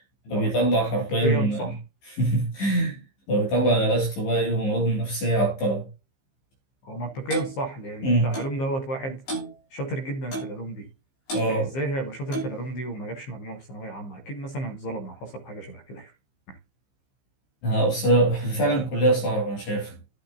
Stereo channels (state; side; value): late; right; 15 ms